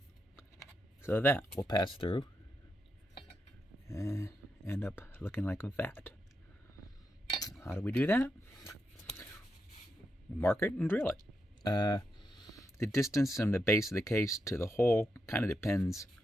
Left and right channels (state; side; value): normal; both; correlation 0.84